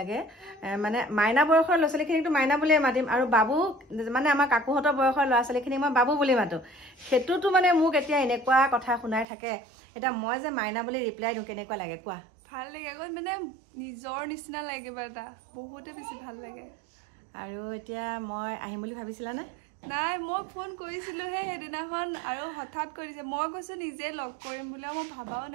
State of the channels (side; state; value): left; drops out; at 9.2 s